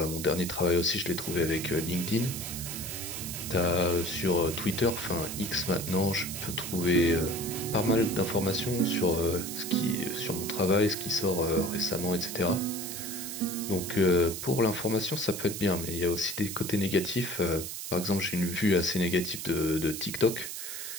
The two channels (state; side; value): noise; right; hiss, 7 dB below the sound